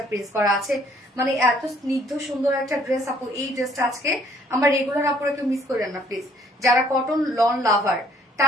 প্রিন্ট করা আছে। মানে এত স্নিগ্ধ সুন্দর একটা ড্রেস আপু। এই ড্রেসটা আজকে আমার রেগুলার আপুরা কেউ মিস করেন না প্লিজ। যারা কটন লন লাভার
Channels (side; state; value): both; normal; correlation 0.62